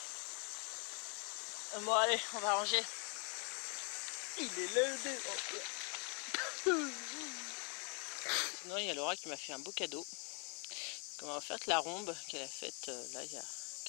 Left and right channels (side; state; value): right; quieter; 37.5 dB